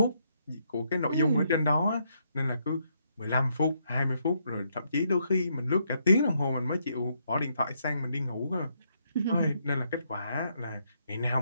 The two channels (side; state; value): both; inverted; correlation -0.75